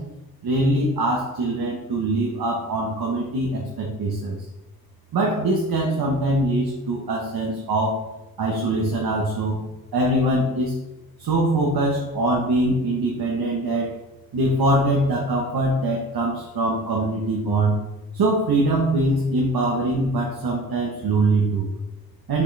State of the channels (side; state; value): both; normal; correlation 0.38